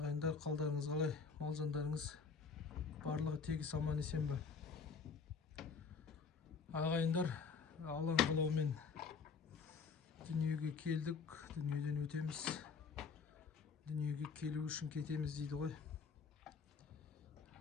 қалдарыңыз қалай? Мал-жандарыңыз барлығы тегіс аман есен бе? Ағайындар, алан қалаумен дүниеге келдік, дүниеден өтеміз. Дүниеге келу үшін кетеміз дейді ғой.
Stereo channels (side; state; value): right; quieter; 5.4 dB